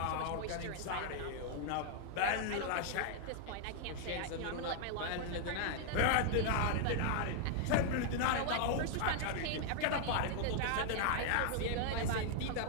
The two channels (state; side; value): different; both; correlation 0.00